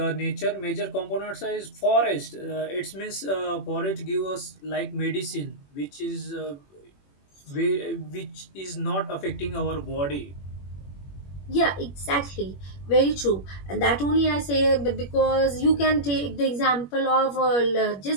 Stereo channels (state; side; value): late; right; 21 ms